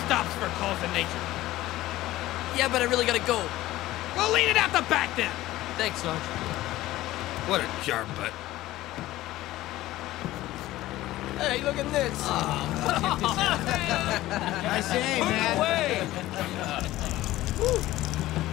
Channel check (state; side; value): quieter; right; 16.2 dB